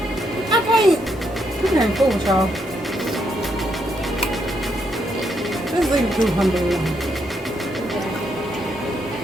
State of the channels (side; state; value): both; normal; correlation 0.77